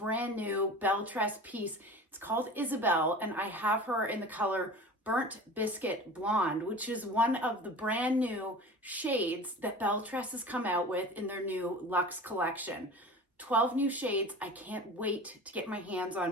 new belle tress piece. It's called Isabel and I have her in the color Burnt Biscuit Blonde, which is one of the brand new shades that belle tress has come out with in their new Lux Collection. 12 new shades. I can't wait to get my hands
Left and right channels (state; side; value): normal; both; correlation 0.37